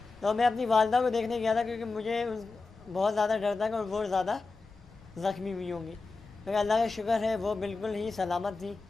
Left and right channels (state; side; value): quieter; right; 3.8 dB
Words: तो मैं अपनी वालदा को देखने गया था क्योंकि मुझे बहुत ज़्यादा डर था कि वो ज़्यादा ज़ख्मी हुई होंगी, लेकिन अल्लाह का शुक्र है वो बिल्कुल ही सलामत थी।